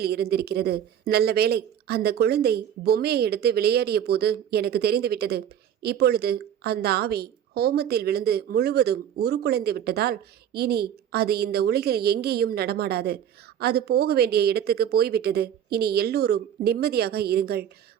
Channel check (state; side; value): quieter; left; 9.7 dB